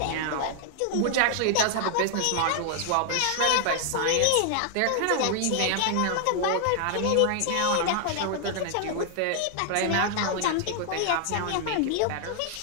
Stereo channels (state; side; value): different; both; correlation 0.00